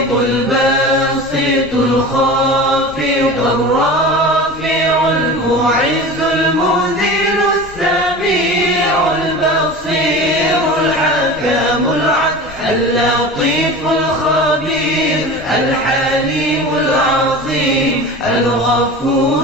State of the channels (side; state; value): left; noise; rumble, 20 dB below the sound